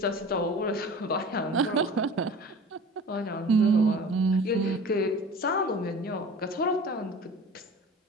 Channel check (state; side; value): normal; both; correlation 0.40